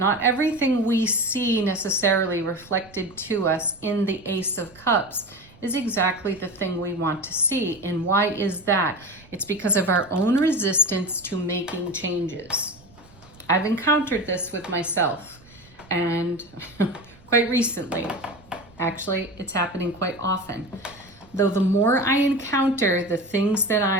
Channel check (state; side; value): noise; right; rumble, 26 dB below the sound